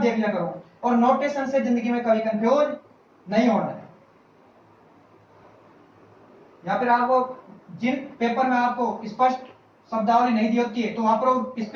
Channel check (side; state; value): both; identical; correlation 1.00